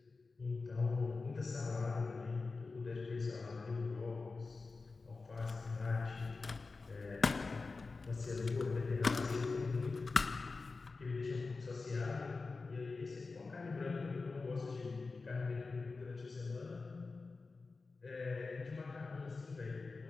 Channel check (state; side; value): quieter; right; 4.0 dB